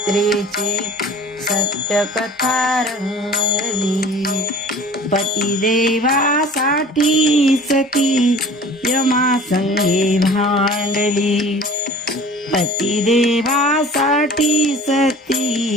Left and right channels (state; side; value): normal; both; correlation 0.45